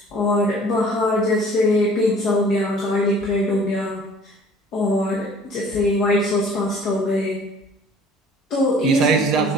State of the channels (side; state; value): both; normal; correlation 0.51